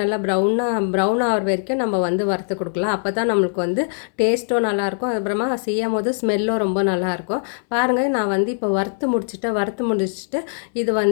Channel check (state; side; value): silent; right; 65 dB below the other